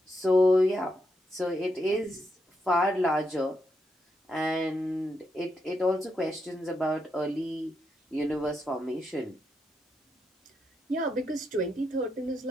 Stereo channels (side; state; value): both; normal; correlation 0.82